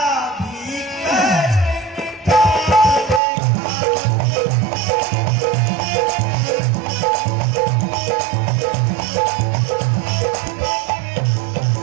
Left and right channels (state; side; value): drops out; left; at 3.2 s